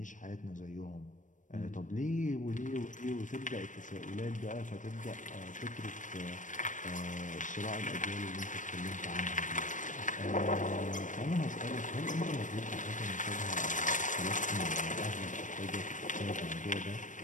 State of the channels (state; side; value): late; right; 0.37 ms